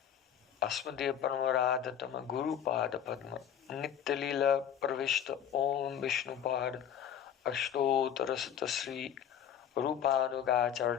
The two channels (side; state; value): right; quieter; 9.3 dB